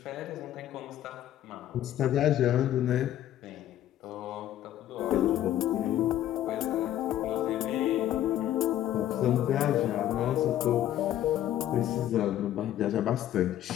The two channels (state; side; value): quieter; right; 12.3 dB